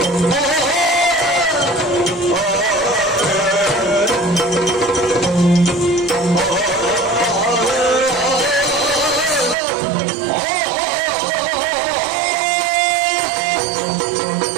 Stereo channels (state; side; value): drops out; left; at 9.6 s